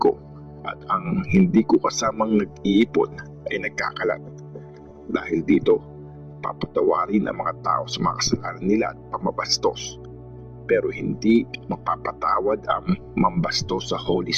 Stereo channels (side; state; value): both; identical; correlation 1.00